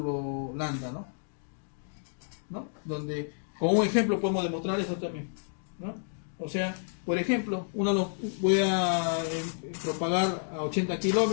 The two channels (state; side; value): silent; right; digital silence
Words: lambda, ¿no? Donde, con un ejemplo podemos demostrar eso también, ¿no? O sea, por ejemplo, voy a propagar a 80